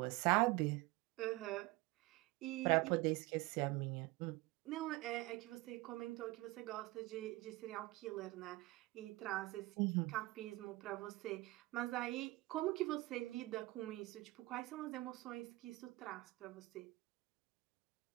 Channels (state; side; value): quieter; left; 20.8 dB